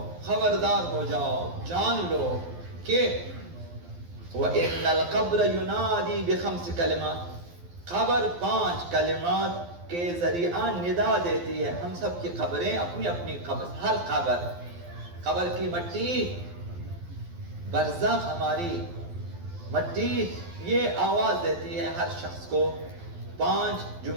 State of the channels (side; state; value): left; late; 12 ms